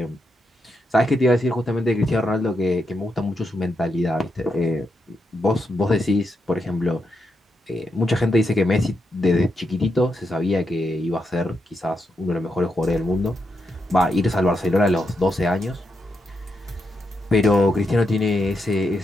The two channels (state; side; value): normal; both; correlation 0.84